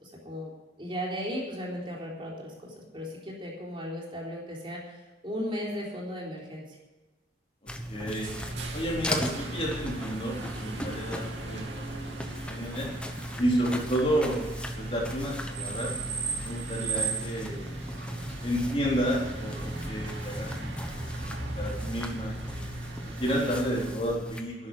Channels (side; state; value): both; normal; correlation 0.61